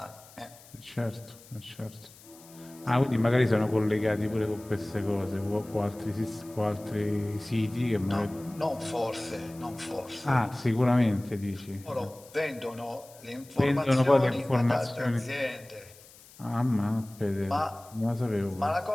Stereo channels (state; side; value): noise; left; hiss, 22 dB below the sound